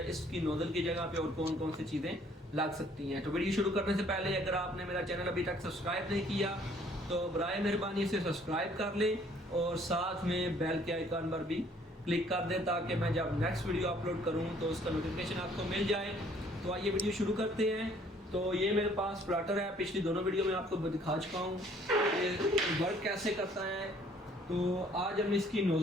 इसकी नोज़ल की जगह पे और कौन कौन सी चीज़ें लग सकती हैं। तो वीडियो शुरू करने से पहले अगर आपने मेरा चैनल अभी तक सब्सक्राइब नहीं किया तो बराए मेहरबानी इसे सब्सक्राइब कर लें और साथ में बेल के आइकन पर भी क्लिक कर दें ताकि मैं जब नेक्स्ट वीडियो अपलोड करूं तो उसका नोटिफिकेशन आपको मिल जाए। तो आइए वीडियो शुरू करते हैं। तो ये मेरे पास प्लॉटर है, पिछली दोनों वीडियो में आपको दिखा चुका हूँ ये वर्क कैसे करता है। तो आज हम इसकी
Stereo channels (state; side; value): normal; both; correlation 0.60